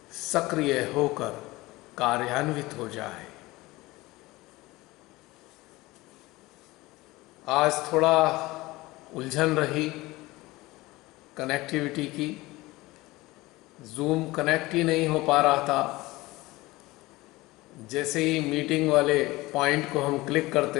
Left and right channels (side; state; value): right; quieter; 20.2 dB